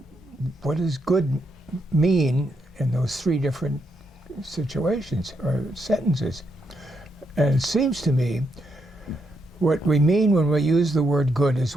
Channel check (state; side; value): normal; both; correlation 0.80